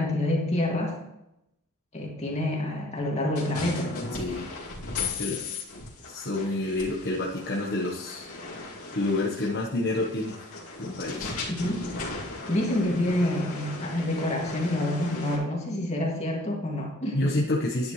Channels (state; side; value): normal; both; correlation 0.55